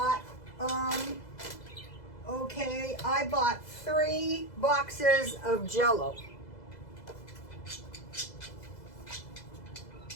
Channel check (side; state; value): right; late; 2.0 ms